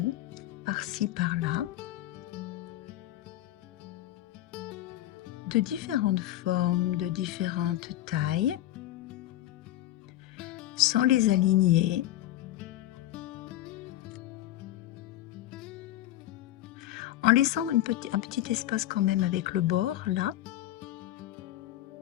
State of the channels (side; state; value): right; quieter; 14.2 dB